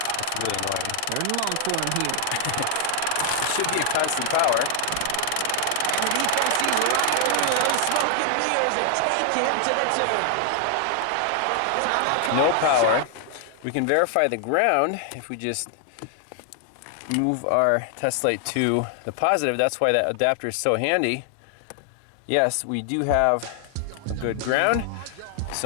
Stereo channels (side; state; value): both; different; correlation 0.00